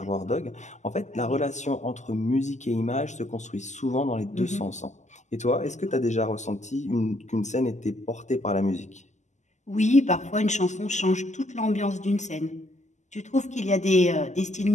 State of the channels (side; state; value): right; late; 0.34 ms